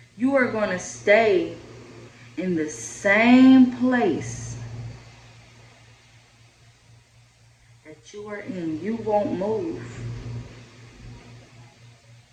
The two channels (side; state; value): both; identical; correlation 1.00